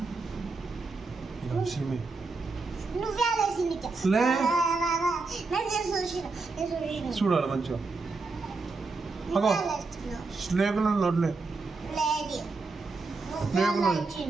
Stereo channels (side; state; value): left; quieter; 3.9 dB